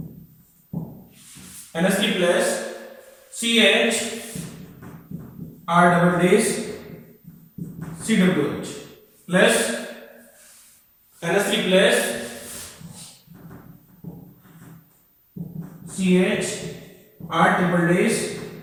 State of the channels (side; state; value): both; identical; correlation 1.00